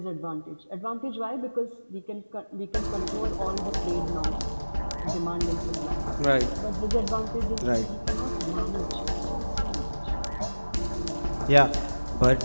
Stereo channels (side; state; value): both; inverted; correlation -1.00